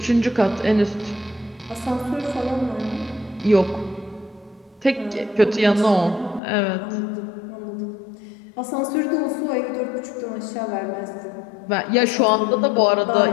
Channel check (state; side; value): drops out; right; at 6.4 s